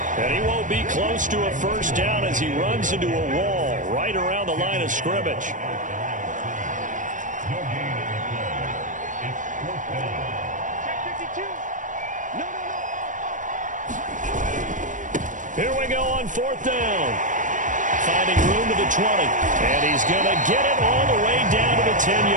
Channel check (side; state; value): left; late; 0.37 ms